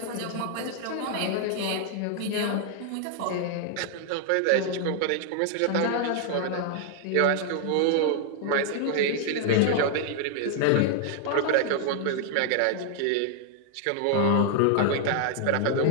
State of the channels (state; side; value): different; both; correlation 0.00